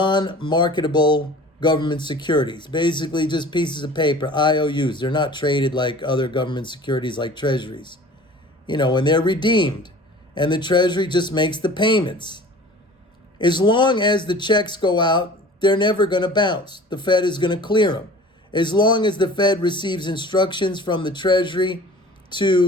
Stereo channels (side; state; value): both; normal; correlation 0.44